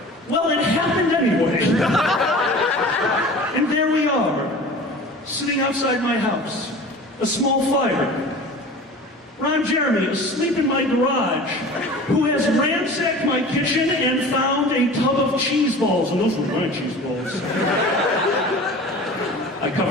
Well, it happened anyway. And there we are, sitting outside my house, a small fire. Ron Jeremy, asleep in my garage, who has ransacked my kitchen and found a tub of cheese balls. And those were my cheese balls. I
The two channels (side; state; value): both; normal; correlation 0.39